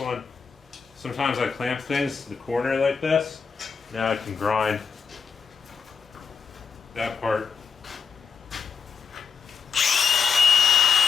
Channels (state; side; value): quieter; right; 5.9 dB